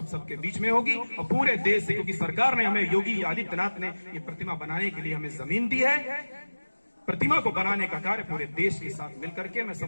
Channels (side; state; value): both; inverted; correlation -1.00